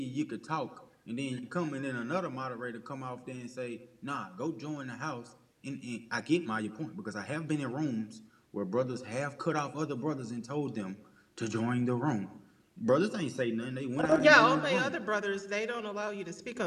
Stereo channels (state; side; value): identical; both; correlation 1.00